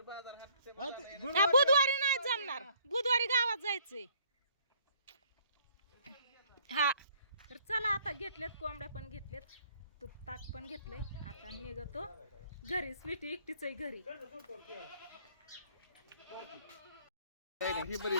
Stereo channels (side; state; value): both; inverted; correlation -0.61